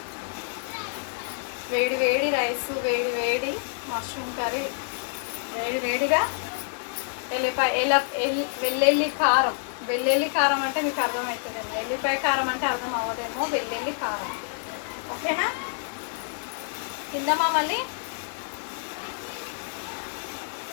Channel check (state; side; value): silent; right; digital silence